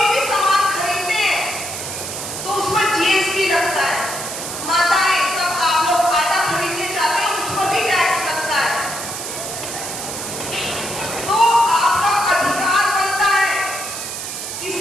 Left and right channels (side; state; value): right; noise; hiss, 6 dB below the sound